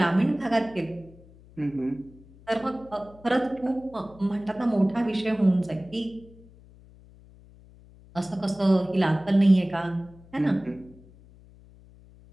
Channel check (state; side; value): noise; left; hum, 24 dB below the sound